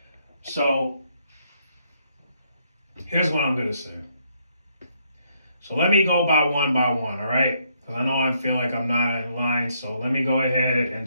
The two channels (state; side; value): inverted; both; correlation -0.73